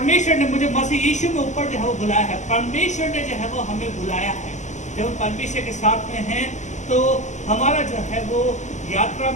ने मुझे मसीह यीशु में ऊपर जो है वो बुलाया है। परमेश्वर ने जो है वो हमें बुलाया है। जब हम परमेश्वर के साथ में हैं तो हमारा जो है वो यात्रा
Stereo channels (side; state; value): right; late; 0.35 ms